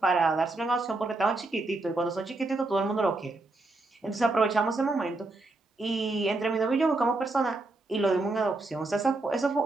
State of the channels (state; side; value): quieter; left; 3.1 dB